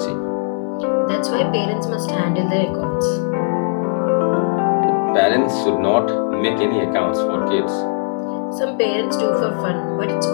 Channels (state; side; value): silent; right; digital silence